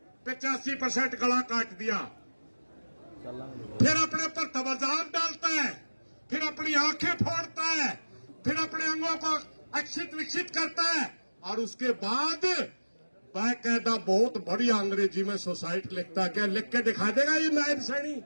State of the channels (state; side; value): inverted; both; correlation -1.00